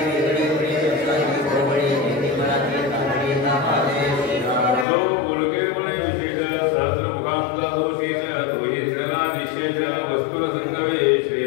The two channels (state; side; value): drops out; right; at 4.9 s